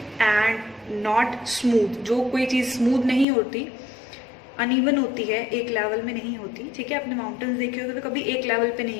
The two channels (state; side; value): drops out; right; at 3.2 s